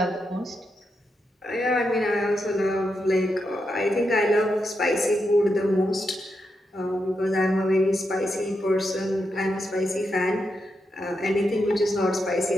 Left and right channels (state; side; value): normal; both; correlation 0.85